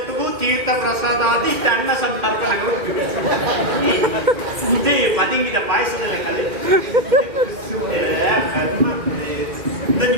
ತೀರ್ಥ ಪ್ರಸಾದಾದಿ ಇಷ್ಟ ಅನ್ನ ಸಂತರ್ಪಣೆಗಳು ಇದೇ ಪದಿಂಗಿದ ಪಾಯಸದಲ್ಲ ಕಲೆ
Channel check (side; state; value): left; late; 2.1 ms